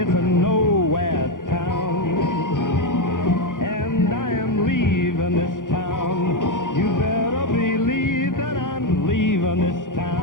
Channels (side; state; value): right; late; 0.88 ms